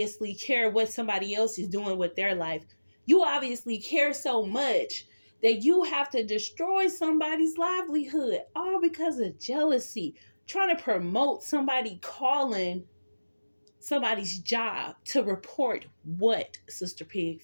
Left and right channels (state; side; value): inverted; both; correlation -1.00